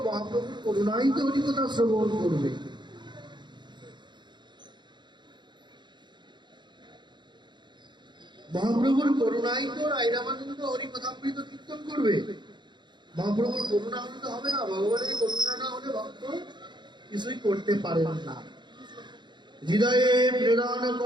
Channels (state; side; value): late; left; 0.22 ms